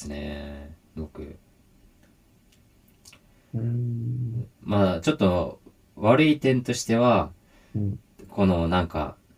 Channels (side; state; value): both; identical; correlation 1.00